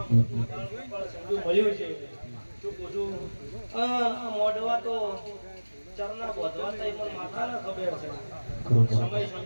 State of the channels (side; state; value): both; inverted; correlation -1.00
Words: સંજુ મળ્યું છે. શું પૂછું? આ મોઢવા તો ચરના બોધવા તો પણ માતાને ખબર છે. સમય